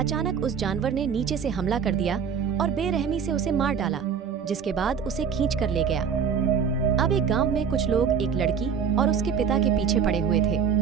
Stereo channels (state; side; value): quieter; left; 6.8 dB